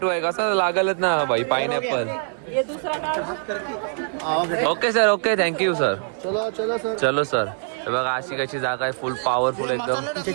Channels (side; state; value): left; silent; digital silence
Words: आहे कसं लागलच ना भाई. Pineapple. Okay sir okay thank you sir. चलो सर. बघा अशी कशी जागा आहे फुल पॉवरफुल एकदम.